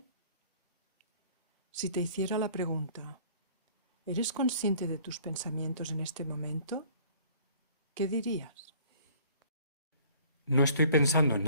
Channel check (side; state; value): both; inverted; correlation -0.53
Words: Si te hiciera la pregunta, ¿eres consciente de tus pensamientos en este momento? ¿Qué dirías? No estoy pensando en